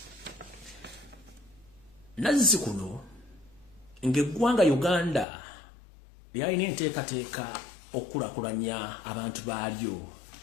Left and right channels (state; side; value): drops out; right; at 5.2 s